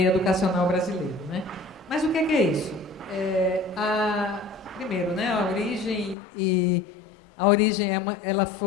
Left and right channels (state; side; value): drops out; right; at 6.2 s